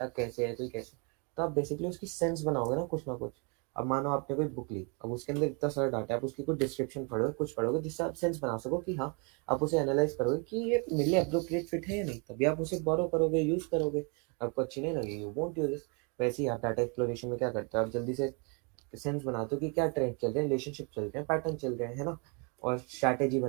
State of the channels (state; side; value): quieter; left; 34.3 dB